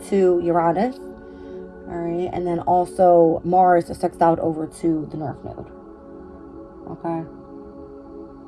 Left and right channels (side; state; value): both; identical; correlation 1.00